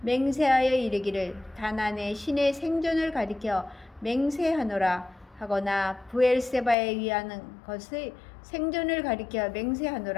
맹세하여 이르기를 다난의 신의 생존을 가리켜 맹세하노라 하거나 부엘세바에 위하는 것의 생존을 가리켜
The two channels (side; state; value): right; drops out; at 6.8 s